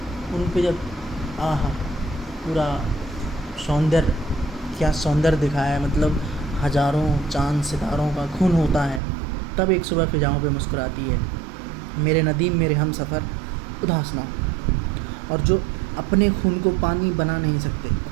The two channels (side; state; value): left; drops out; at 9.0 s